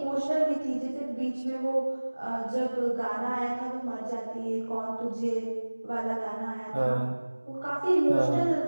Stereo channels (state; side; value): inverted; both; correlation -1.00